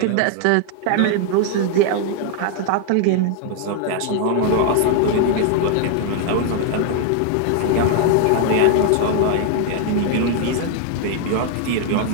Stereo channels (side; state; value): both; different; correlation 0.00